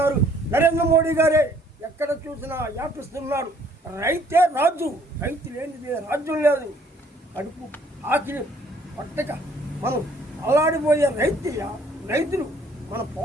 నరేంద్ర మోడీ గారే ఎక్కడ చూసినా వ్యాపిస్తున్నాడు. రైతే రాజు, రైతు లేనిదే రాజ్యం లేదు. కడుపు ఆకిలి పట్టక మనం అల్లాడిపోయే రైతులు మన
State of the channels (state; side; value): normal; both; correlation 0.61